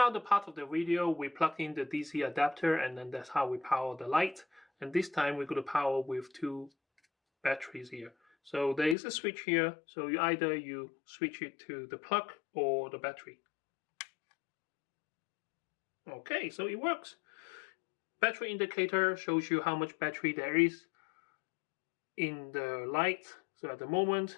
the part of the video we plugged in the DC adapter, and then that's how we power the light. And this time we're going to power with 2 batteries here. So there is a switch here, so you switch it to the plug or the battery. Okay, so it works. Battery indicator shows you how much battery there is in the light. So at the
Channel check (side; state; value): right; drops out; at 9.0 s